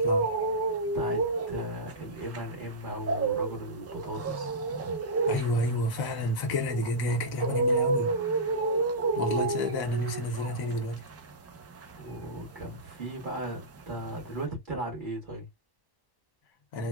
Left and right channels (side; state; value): right; late; 1.1 ms